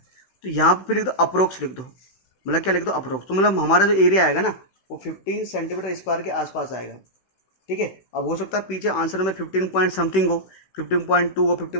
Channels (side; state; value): right; late; 16 ms